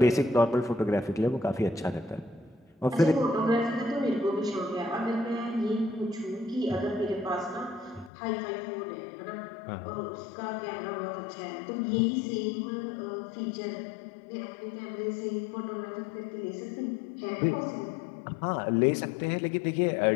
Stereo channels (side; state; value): right; drops out; at 8.1 s